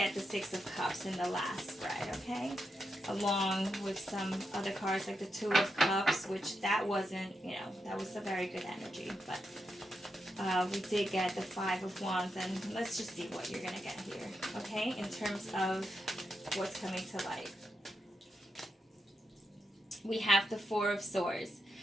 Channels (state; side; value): normal; both; correlation 0.85